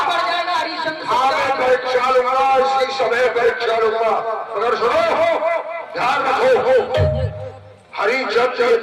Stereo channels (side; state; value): both; identical; correlation 1.00